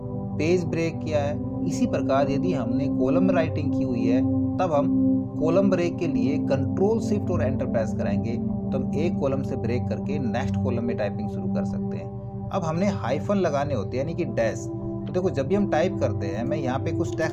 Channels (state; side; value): identical; both; correlation 1.00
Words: पेज ब्रेक किया है। इसी प्रकार यदि हमने कॉलम राइटिंग की हुई है, तब हम कॉलम ब्रेक के लिए कंट्रोल शिफ्ट और एंटर प्रेस कराएंगे, तो हम एक कॉलम से ब्रेक करके नेक्स्ट कॉलम में टाइपिंग शुरू कर सकते हैं। अब हमने हाइफन लगाने होते हैं, यानी कि डैश। तो देखो जब भी हम टाइप करते हैं, मैं यहाँ पे कुछ